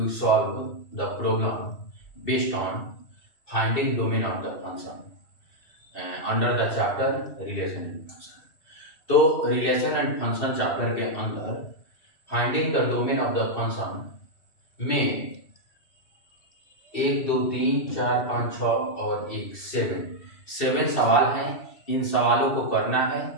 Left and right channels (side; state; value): right; late; 2.7 ms